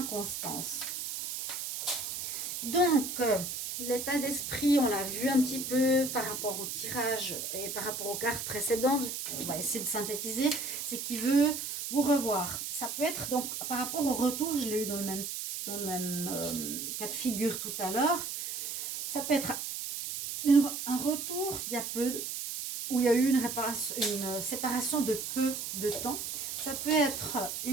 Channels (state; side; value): noise; right; hiss, 5 dB below the sound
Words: Donc, l'état d'esprit, on l'a vu un petit peu par rapport au tirage et par rapport aux cartes précédentes. On va essayer de synthétiser. C'est qu'il veut vous revoir. Ça peut être donc par rapport au retour, je l'ai eu dans le même cas de figure tout à l'heure. Ça peut être un retour d'il y a peu, où il y a eu une séparation de peu de temps. Ça peut être